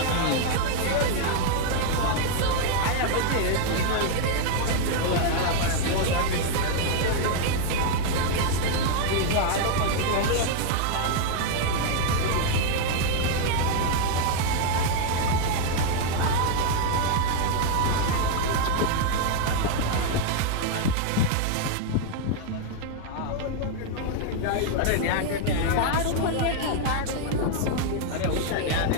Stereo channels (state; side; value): different; both; correlation 0.00